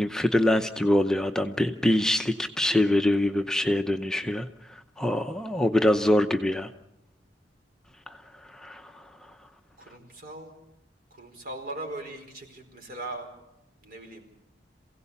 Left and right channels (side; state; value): both; normal; correlation 0.87